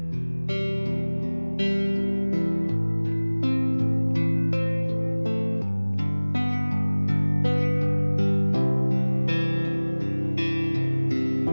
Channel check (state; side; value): inverted; both; correlation -1.00